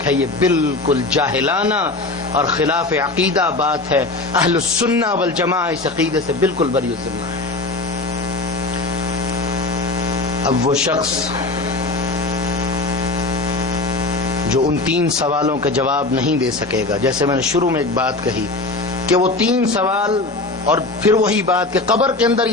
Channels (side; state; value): right; quieter; 3.1 dB